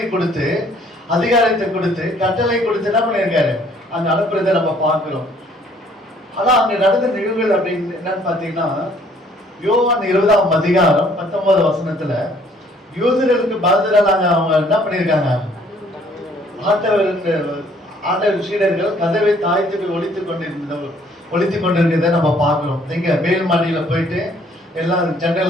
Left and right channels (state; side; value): normal; both; correlation 0.61